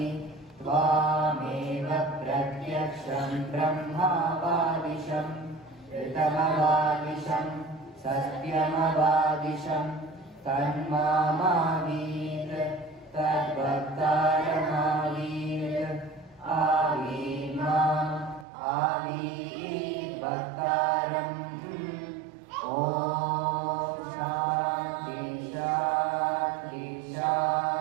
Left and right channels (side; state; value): left; drops out; at 18.4 s